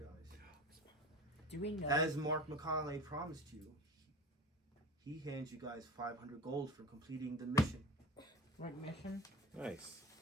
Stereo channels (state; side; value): normal; both; correlation 0.34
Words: do we know? As Mark Macaulay promised you, he hands you guys 500 gold for completing the mission. What mission? Nice.